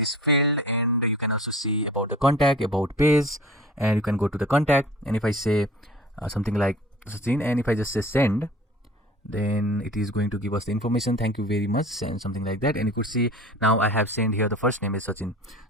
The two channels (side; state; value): both; normal; correlation 0.43